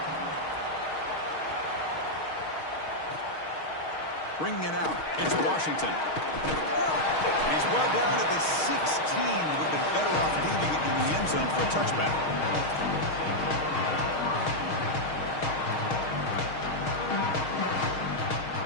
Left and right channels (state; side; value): late; right; 6.4 ms